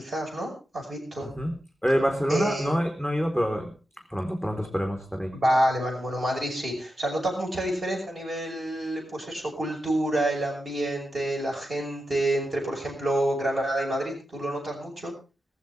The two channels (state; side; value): normal; both; correlation 0.90